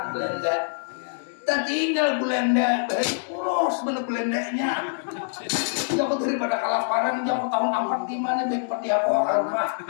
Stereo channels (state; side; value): silent; right; digital silence